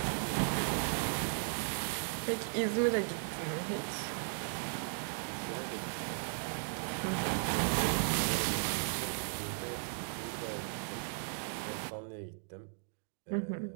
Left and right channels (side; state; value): left; silent; digital silence